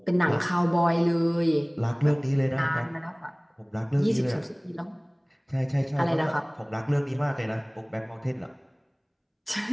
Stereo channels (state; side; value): identical; both; correlation 1.00